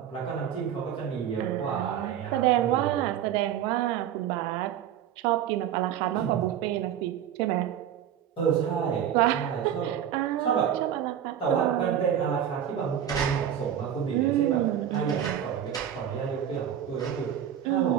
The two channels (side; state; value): left; quieter; 9.8 dB